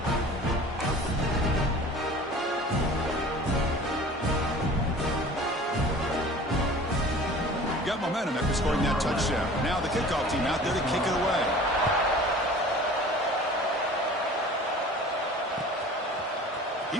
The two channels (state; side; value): normal; both; correlation 0.43